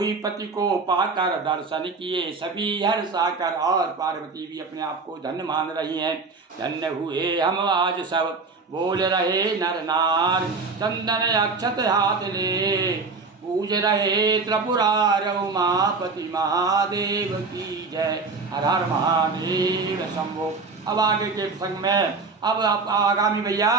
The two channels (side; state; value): left; quieter; 4.2 dB